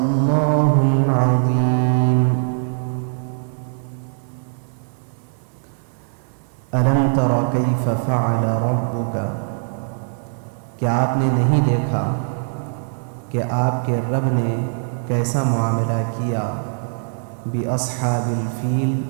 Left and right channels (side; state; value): left; silent; digital silence